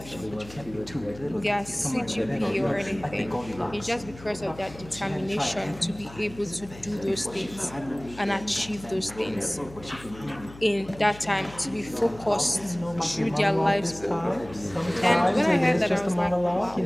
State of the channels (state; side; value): noise; left; hum, 17 dB below the sound